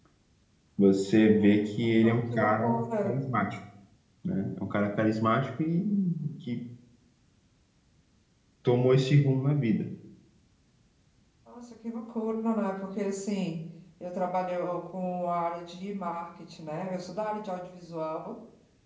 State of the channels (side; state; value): both; identical; correlation 1.00